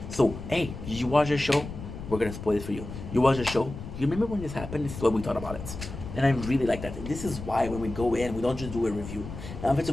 So, hey, did you watch the show? We're gonna spoil it for you. You watch the show? You remember when this happened? This is what we thought about it. And I really like that. This is why when we go in, we don't just do a review. Now, if it's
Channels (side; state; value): left; noise; rumble, 10 dB below the sound